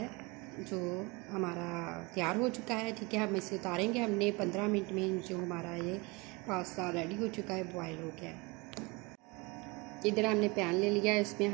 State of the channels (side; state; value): left; quieter; 26.4 dB